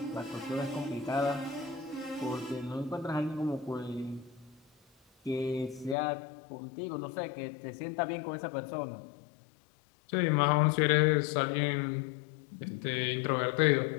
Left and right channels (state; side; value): drops out; right; at 6.0 s